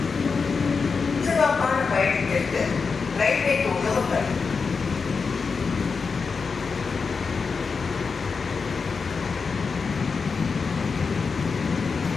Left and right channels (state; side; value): quieter; right; 5.0 dB